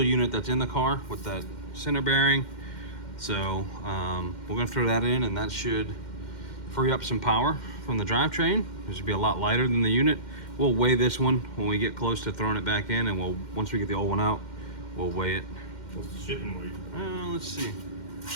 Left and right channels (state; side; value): late; right; 2.1 ms